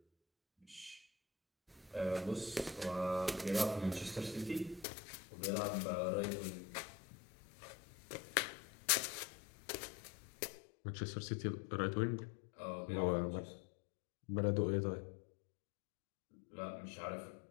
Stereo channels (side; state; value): right; drops out; at 4.9 s